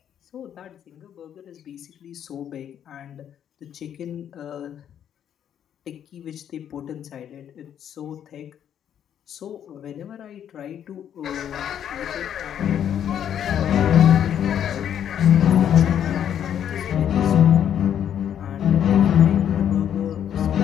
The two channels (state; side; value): quieter; right; 9.5 dB